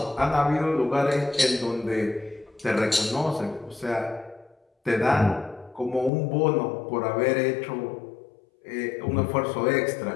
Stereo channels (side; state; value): right; drops out; at 6.1 s